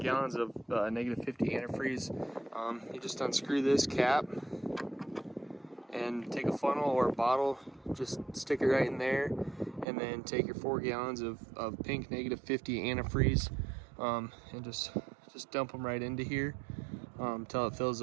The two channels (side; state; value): left; drops out; at 9.9 s